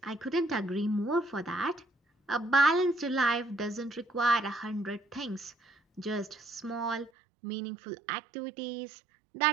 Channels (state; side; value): drops out; left; at 7.1 s